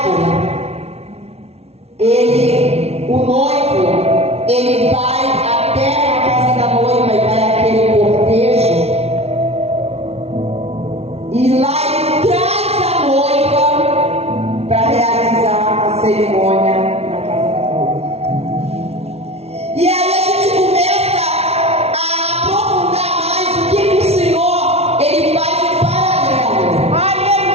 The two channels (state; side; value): late; left; 0.30 ms